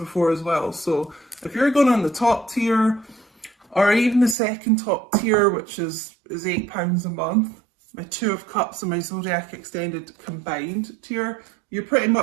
as well. So if you're going on the top tier, or even the second top tier, which is £8 a month, my Two of Cups and my Zodiac Extended combined tier, you're pretty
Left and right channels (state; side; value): drops out; left; at 4.4 s